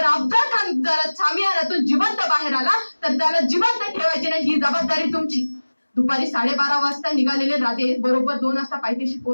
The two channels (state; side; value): inverted; both; correlation -1.00